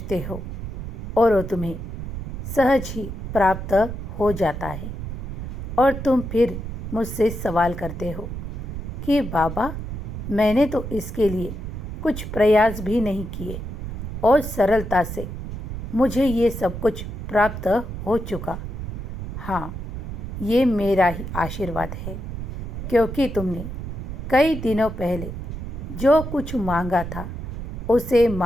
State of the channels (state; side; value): noise; right; rumble, 7 dB below the sound